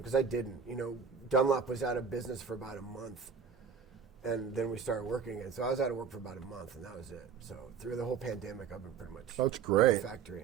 I didn't. Dunlop was out of business for about a month, and then we started working again. So I was out of work for about a month, and that was it. So through the whole pandemic, I've been pretty much that's great. At the factory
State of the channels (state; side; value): quieter; left; 6.4 dB